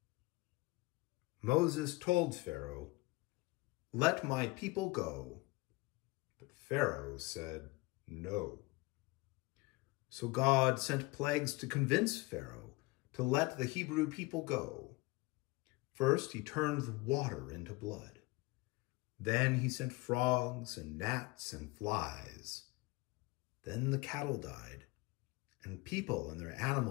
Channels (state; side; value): quieter; right; 23.2 dB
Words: Moses told Pharaoh, "Let my people go." But Pharaoh said, "No." So God sent plagues to convince Pharaoh to let the Hebrew people go. First, he turned the water into blood. Then he sent frogs and gnats and flies. Then the cattle died, and people and their